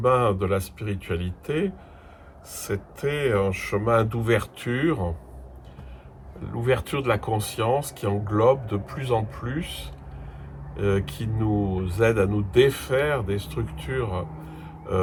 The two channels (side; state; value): both; identical; correlation 1.00